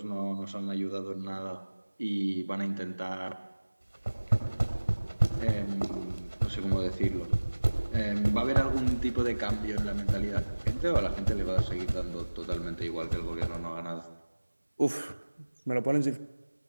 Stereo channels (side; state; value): both; inverted; correlation -1.00